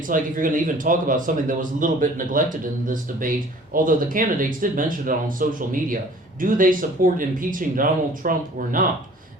like if you're going to even talk about something that was a little bit neglected in this debate, although the candidates did mention it on social media, do they support impeaching Donald Trump or not?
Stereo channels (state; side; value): normal; both; correlation 0.50